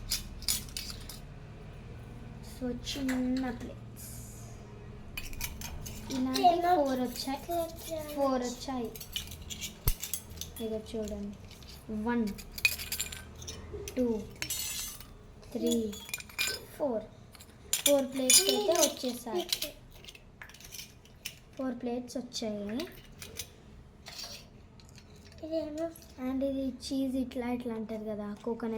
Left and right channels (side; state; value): both; identical; correlation 1.00